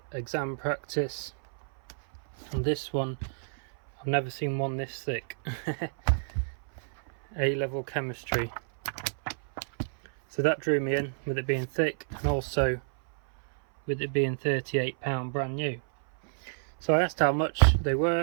exam practice, and this one, I've never seen one this thick. A-level chemistry. So that drew me in with it being thick, and also with it being £38 brand new. So I asked how much they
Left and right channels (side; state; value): left; silent; 57 dB below the other